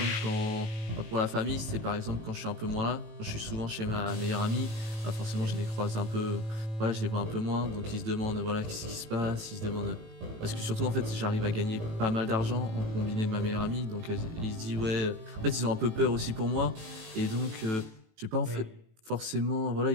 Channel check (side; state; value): left; late; 18 ms